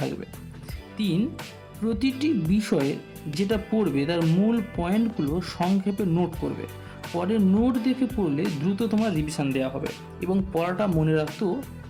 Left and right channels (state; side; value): identical; both; correlation 1.00